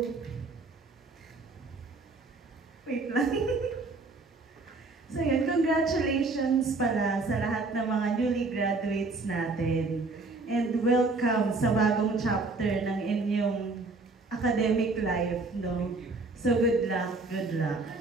wait lang. So yun, congratulations pala sa lahat ng mga newly graduates natin. And welcome sa bagong chapter ng inyong academic life, no? So good luck,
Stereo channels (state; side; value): quieter; left; 3.6 dB